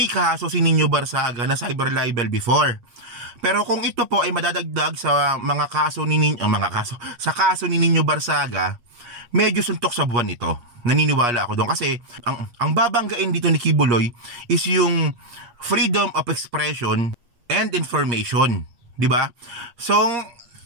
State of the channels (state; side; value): late; left; 8.4 ms